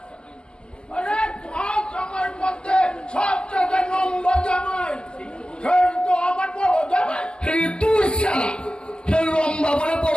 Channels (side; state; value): right; late; 0.053 ms